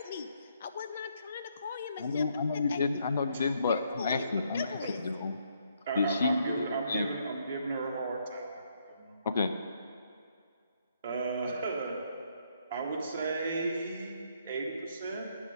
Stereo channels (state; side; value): inverted; both; correlation -0.72